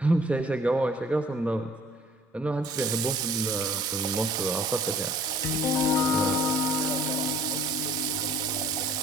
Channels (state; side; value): normal; both; correlation 0.54